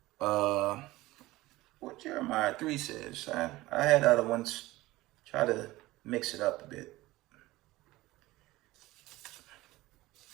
What Jeremiah 3 says. I had other ones. Try to mix it up a bit.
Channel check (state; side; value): quieter; left; 18.5 dB